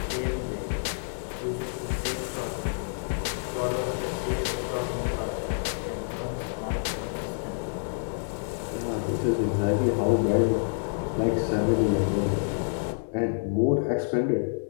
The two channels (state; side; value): silent; right; digital silence